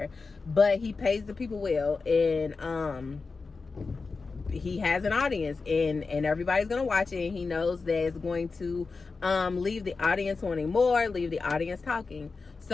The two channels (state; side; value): quieter; right; 4.3 dB